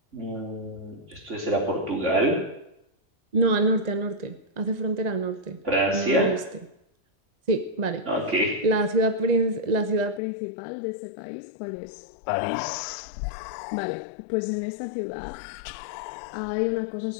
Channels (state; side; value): drops out; right; at 10.2 s